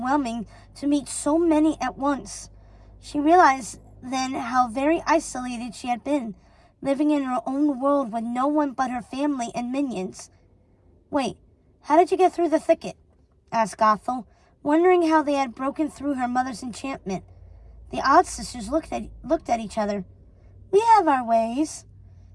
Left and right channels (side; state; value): both; identical; correlation 1.00